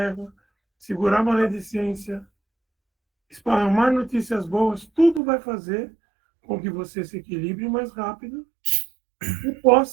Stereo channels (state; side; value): drops out; left; at 5.2 s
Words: segurar a maledicência, esparramar notícias boas, tudo vai fazer com que você se equilibre mais rápido e